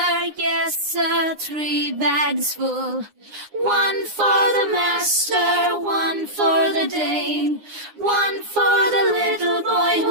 3 bags full. One for the master, one for the dame, one for the little boy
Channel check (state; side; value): late; left; 9.7 ms